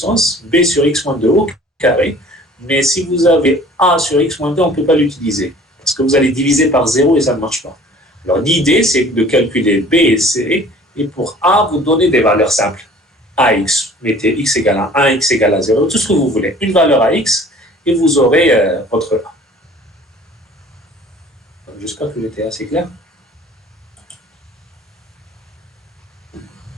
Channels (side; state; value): both; normal; correlation 0.49